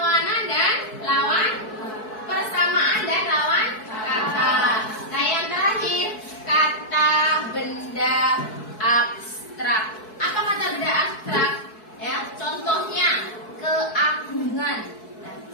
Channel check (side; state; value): right; late; 4.6 ms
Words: dan lawan, persamaan dan lawan kata. Nah, yang terakhir kata benda abstrak. Apa kata benda abstrak? Ya, contohnya keagungan,